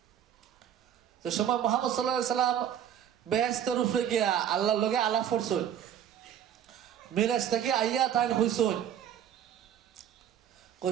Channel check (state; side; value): quieter; left; 9.7 dB